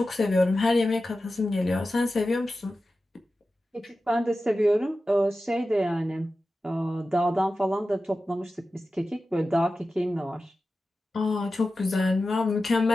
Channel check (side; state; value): both; normal; correlation 0.93